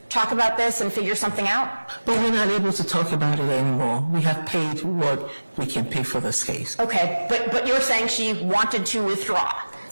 talk about this and figure something out? But we're not able to talk about it anymore. We have paid what we can pay for this case. Okay, but you're saying she wanted to withdraw.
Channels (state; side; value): inverted; both; correlation -1.00